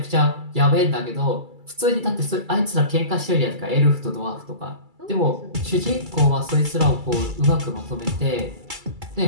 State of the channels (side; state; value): left; late; 2.3 ms